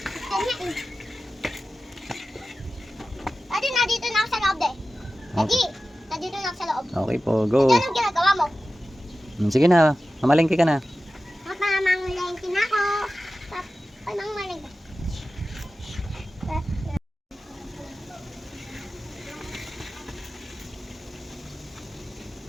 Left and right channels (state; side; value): normal; both; correlation 0.94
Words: Kanya eh. Daddy, nandito na ako sa loob eh. Daddy, nandito na ako sa loob. Okay po, go. Ito anong ginagawa mo? Sige na, mamalengke ka na. Mamangulengke na ako. Ay, mangulengke.